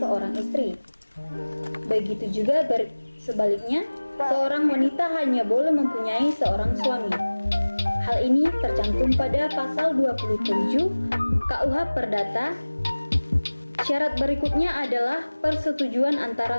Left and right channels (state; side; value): inverted; both; correlation -1.00